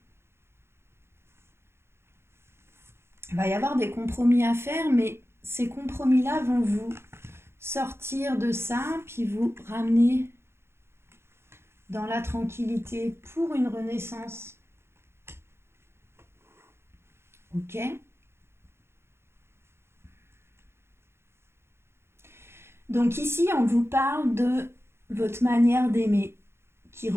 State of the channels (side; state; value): left; late; 0.12 ms